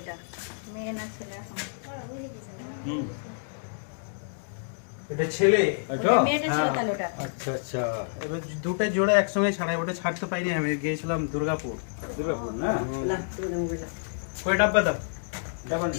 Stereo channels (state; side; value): silent; right; digital silence